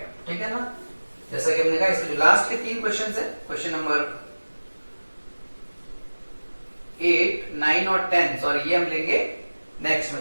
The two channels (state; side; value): inverted; both; correlation -1.00